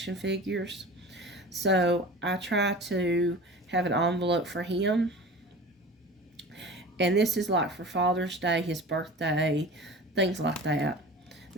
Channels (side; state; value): both; normal; correlation 0.37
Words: figures. So I try to have an envelope for him. And this is like for Father's Day, his birthday, things like that.